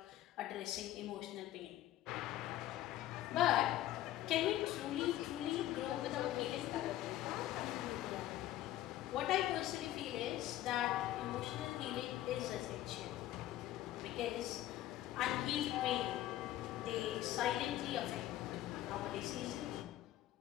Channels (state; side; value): quieter; right; 13.9 dB